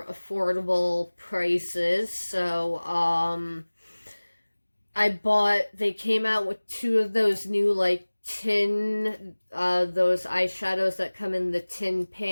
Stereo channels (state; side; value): inverted; both; correlation -1.00